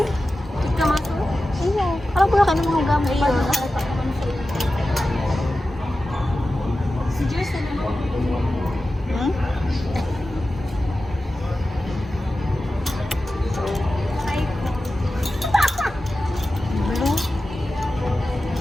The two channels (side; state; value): both; normal; correlation 0.94